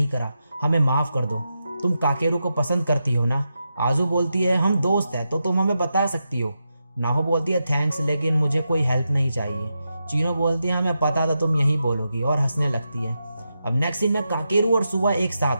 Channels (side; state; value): both; inverted; correlation -0.87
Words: करा, हमें माफ़ कर दो। तुम काकेरू को पसंद करती हो ना। आजू बोलती है हम दोस्त हैं तो तुम हमें बता सकती हो। नाहो बोलती है थैंक्स, लेकिन मुझे कोई हेल्प नहीं चाहिए। चीनो बोलती है हमें पता था तुम यही बोलोगी, और हंसने लगती है। अब नेक्स्ट सीन में काकेरू और सुआ एक